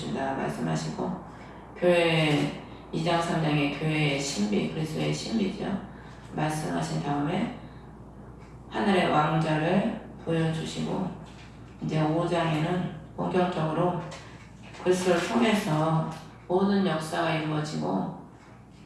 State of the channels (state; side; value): identical; both; correlation 1.00